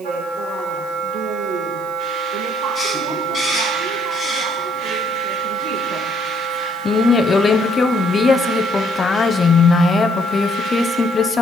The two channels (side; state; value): right; noise; hiss, 25 dB below the sound